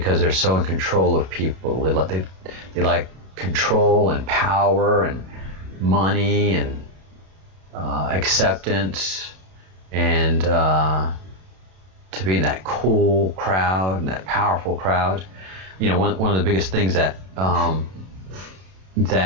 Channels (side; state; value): left; late; 32 ms